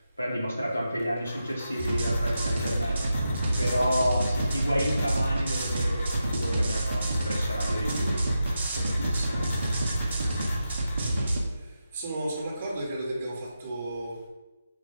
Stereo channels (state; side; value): inverted; both; correlation -0.87